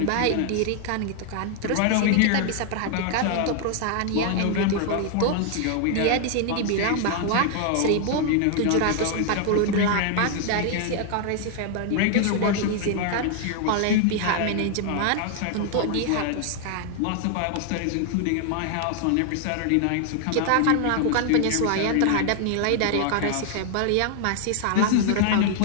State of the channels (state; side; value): different; both; correlation 0.00